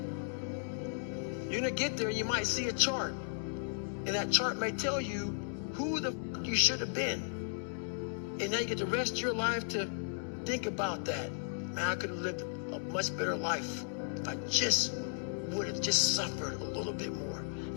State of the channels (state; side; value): silent; right; digital silence